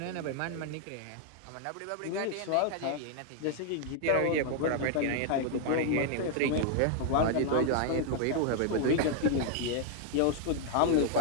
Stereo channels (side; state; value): both; different; correlation 0.00